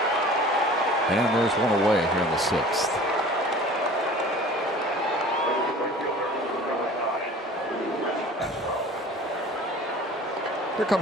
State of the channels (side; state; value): both; normal; correlation 0.44